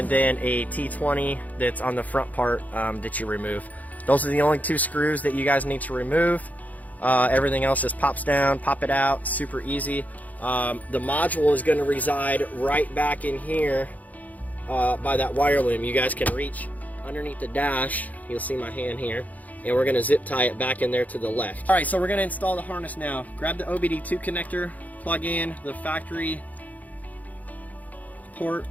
then a T20 that's on the front part that you remove. Those are the only 2 screws that you guys need to remove. Everything else just pops down, pop it out, super easy. The module is going to reside right back in here by that wire loom. You guys can reach underneath the dash, you'll see my hand here, and we're going to zip tie it back in there to the left. Alright, so we're going to install the harness now. Grab the OBD2 connector, plug in the factory port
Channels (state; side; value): late; right; 0.077 ms